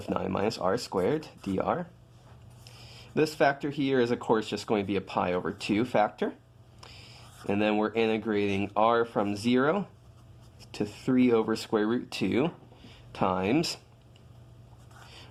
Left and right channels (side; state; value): both; identical; correlation 1.00